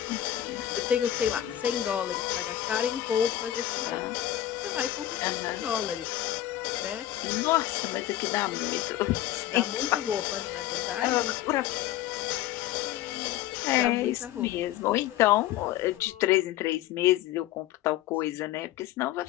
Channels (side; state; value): right; quieter; 13.1 dB